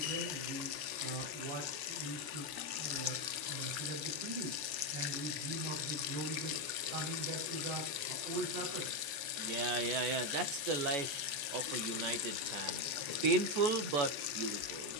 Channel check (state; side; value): late; left; 13 ms